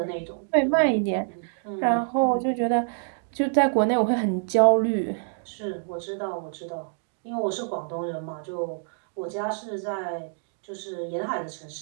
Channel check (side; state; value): left; silent; 61 dB below the other